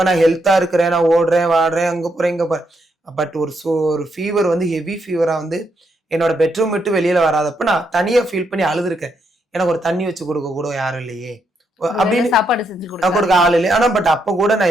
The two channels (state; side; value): normal; both; correlation 0.78